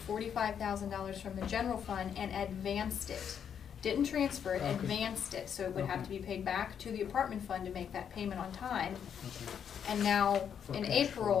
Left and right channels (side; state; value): right; quieter; 8.1 dB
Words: $45,000 from the general fund and advanced it. Didn't transfer it, Okay. advanced it, so it would have to Okay. be paid back to the apartment fund to make that payment on time. okay. And now, For in cash